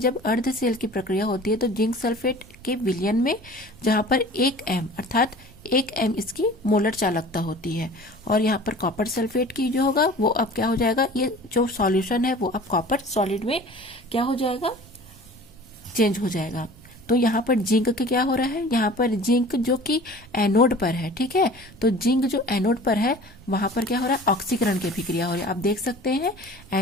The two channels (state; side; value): noise; right; rumble, 23 dB below the sound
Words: अर्ध सेल की प्रक्रिया होती है तो जिंक सल्फेट के विलयन में, जहाँ पर 1 m अर्थात 1 m इसकी मोलर चालकता होती है, और यहाँ पर कॉपर सल्फेट की जो होगा वो अब क्या हो जाएगा, ये जो सॉल्यूशन है वो अब कॉपर सॉलिड में क्या हो जाएगा, चेंज हो जाएगा। तो यहाँ पर जिंक के क्या हो रहा है, यहाँ पर जिंक जो कि एनोड पर है, ठीक है, तो जिंक जो एनोड पर है वहां पर क्या हो रहा है, ऑक्सीकरण की अभिक्रिया हो रही है। आप देख सकते हैं